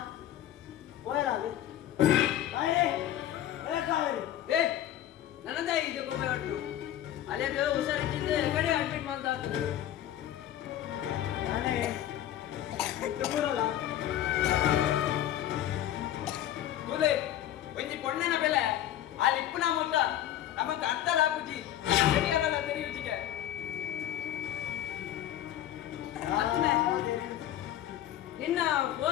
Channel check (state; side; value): quieter; right; 12.1 dB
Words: అది ಕಾವೇರಿ ಏ ನನ್ನದ ಇದು ಗೋಪಿ ಹೊಟ್ಟು ಅಲ್ಲಿಗೆ ಹುಷಾರಿಟ್ಟಿದ್ದೆ ಕಡೆ ಅಡ್ಮಿಟ್ ಮಾಡ್ತಾ ಇದ್ರು ನಾನೇ ಬಿಟ್ಟು ಬರಲ್ಲ ಕೂಲೆ ಒಂಜಿ ಪೊಣ್ಣನ ಬೆಲೆ ಆ ಲಿಪ್ಪುನ ಮೊತ್ತ ನಮಗೆ ಅರ್ಥ ಹಾಕುಜಿ ಸರಿಯಲ್ಲ ತೆರೆಯುಜಿಗೆ ನಿನ್ನ